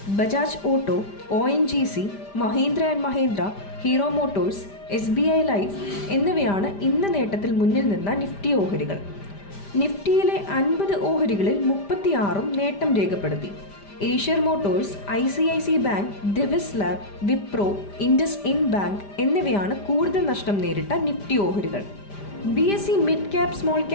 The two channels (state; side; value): late; right; 5.0 ms